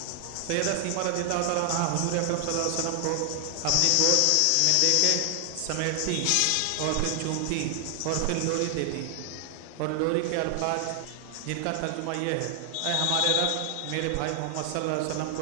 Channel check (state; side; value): different; both; correlation 0.00